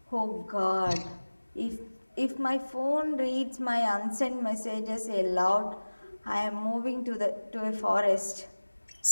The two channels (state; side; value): inverted; both; correlation -1.00